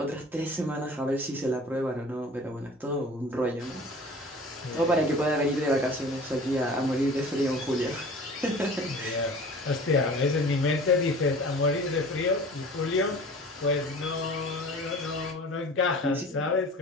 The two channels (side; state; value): both; normal; correlation 0.43